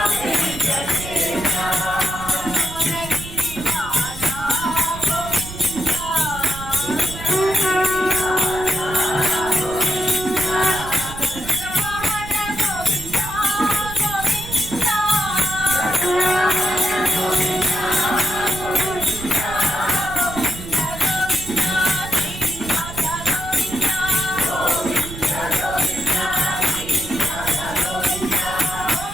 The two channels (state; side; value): noise; right; rumble, 11 dB below the sound